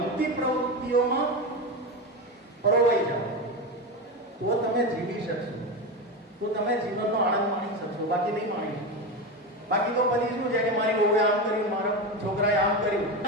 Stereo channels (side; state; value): both; normal; correlation 0.18